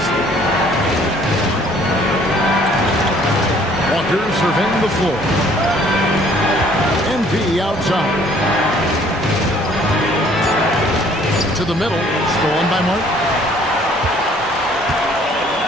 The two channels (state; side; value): normal; both; correlation 0.59